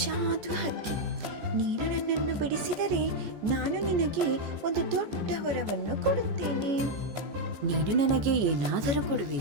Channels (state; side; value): late; left; 14 ms